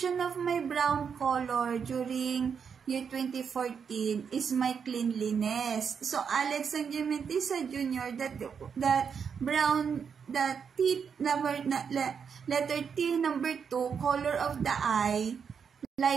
of my brown color during year 2014 is my cleanliness. So Alex Sangimentisa Jr., that brown, that T number, letter T number 2, color of the eye,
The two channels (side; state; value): left; quieter; 6.7 dB